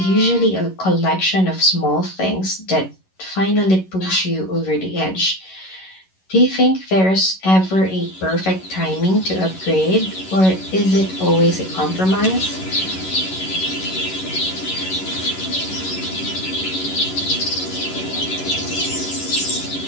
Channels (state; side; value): late; right; 11 ms